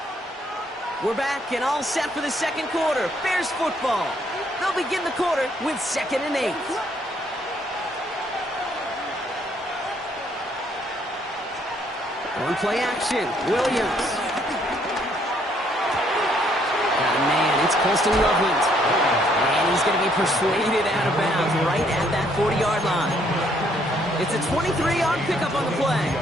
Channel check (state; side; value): normal; both; correlation 0.68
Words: We're back and all set for the second quarter. Bears football. They'll begin the quarter with 2nd and 8. On play action, Williams. Oh man, it's Colston Loveland. And he's going to be persuaded out of bounds right at that 40-yard line. It's a 23-yard pickup on the play.